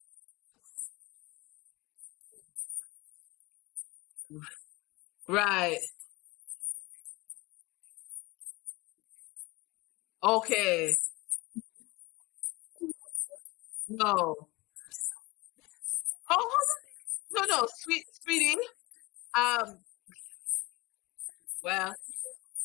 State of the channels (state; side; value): quieter; right; 23.4 dB